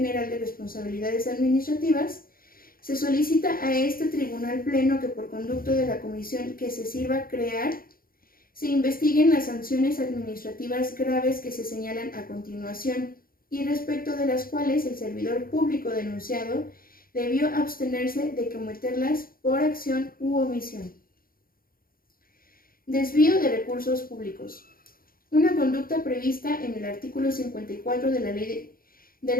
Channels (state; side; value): late; right; 0.42 ms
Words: de Responsabilidades Administrativas, se solicita a este tribunal pleno que por conducto de la comisión que se sirva crear, se investiguen las sanciones administrativas graves que se señalan a continuación y respecto de las cuales el servidor público denunciado debió abstenerse de cometerlas por acción u omisión. Desvío de recursos públicos. Una conducta prevista en el artículo 54 de